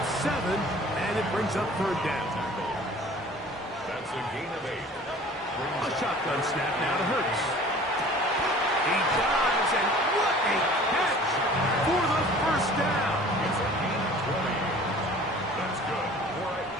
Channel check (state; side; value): normal; both; correlation 0.47